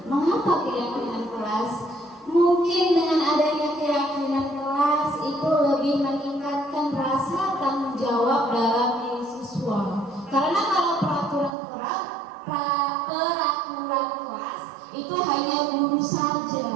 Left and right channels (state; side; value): drops out; left; at 11.5 s